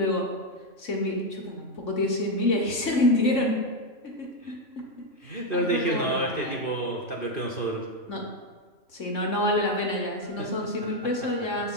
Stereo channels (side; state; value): right; late; 3.6 ms